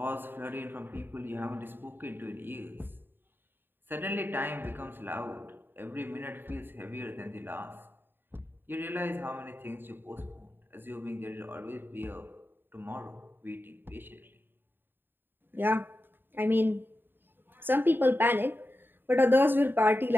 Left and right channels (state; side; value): late; left; 0.097 ms